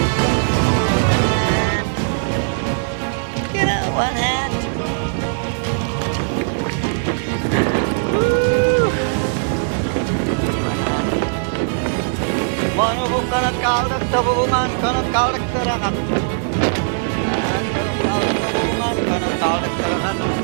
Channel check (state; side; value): silent; left; digital silence